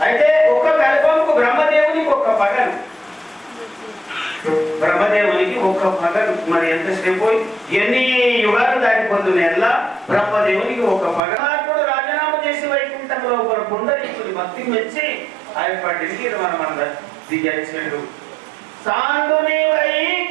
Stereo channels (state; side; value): drops out; left; at 11.2 s